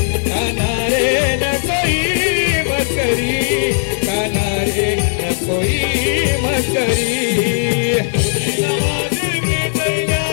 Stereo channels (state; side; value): silent; right; digital silence